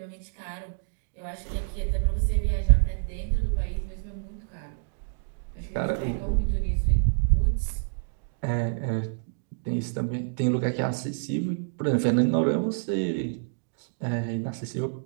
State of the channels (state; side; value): silent; left; digital silence